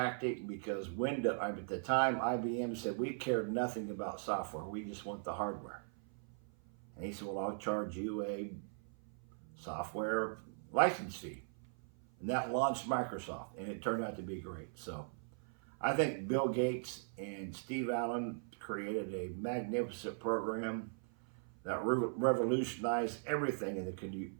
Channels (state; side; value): silent; left; 51 dB below the other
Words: because Windows, at the time, IBM said, we cared nothing about software. We just want the hardware. And he said, well, I'll charge you a software license fee. And that launched Microsoft, and it turned out to be great. So I think Bill Gates and Steve Allen created a magnificent program that revolutionized everything in the